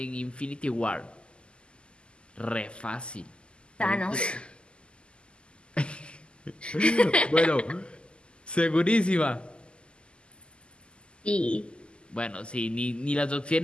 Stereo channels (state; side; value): late; right; 0.051 ms